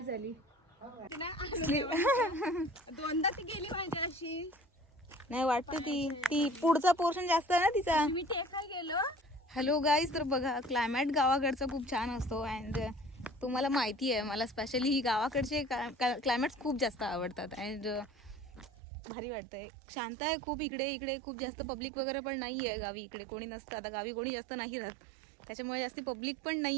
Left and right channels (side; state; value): left; drops out; at 18.7 s